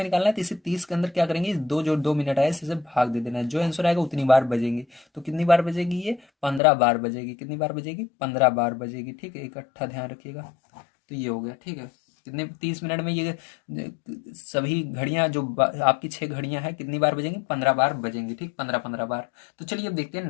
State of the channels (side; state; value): right; drops out; at 6.6 s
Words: निकालना है, तो इसे 30 के अंदर क्या करेंगे, दो जो 2 मिनट आए इसे भाग दे देना है, जो आंसर आएगा उतनी बार बजेंगे। तो कितनी बार बजेगी ये, 15 बार बजेगी। कितनी बार बजेगी, 15 बार बजेगी। ठीक है, इकट्ठा ध्यान रखिएगा। तो ये हो गया। ठीक है, कितने 30 मिनट में ये सभी घड़ियां जो आपकी 6 घड़ियां हैं कितनी बार बजेंगी, 15 बार बजेंगी। ठीक, 15 बार। तो चलिए अब देखते हैं